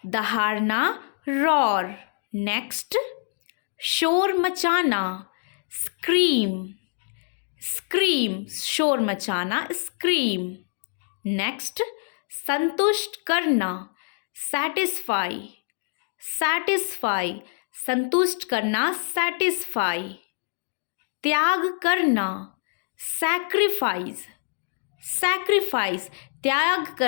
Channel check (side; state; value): right; silent; digital silence